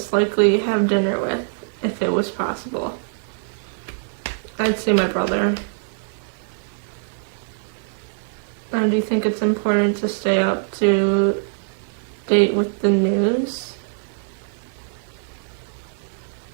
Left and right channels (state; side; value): silent; left; digital silence